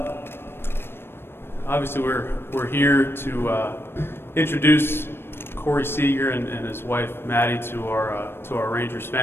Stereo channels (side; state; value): right; late; 0.11 ms